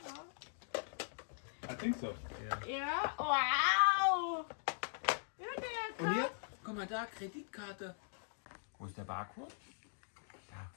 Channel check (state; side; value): silent; right; digital silence